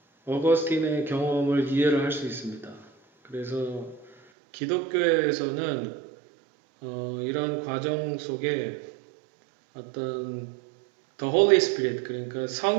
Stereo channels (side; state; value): left; drops out; at 4.2 s